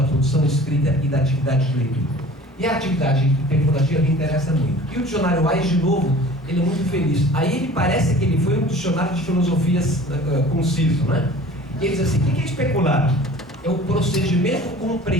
produção escrita e da atividade de leitura. E a atividade especulativa me interessa muito. E o dicionário Wise, de novo, ele é muito feliz. Aí ele parece que ele foi um dicionário de filosofias conciso, né? E ele diz assim, o que é especular? É o procedimento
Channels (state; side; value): normal; both; correlation 0.45